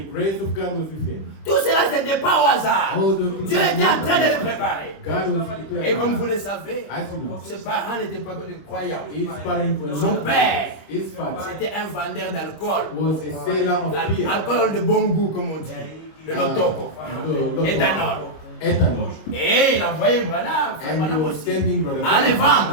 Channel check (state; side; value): late; right; 25 ms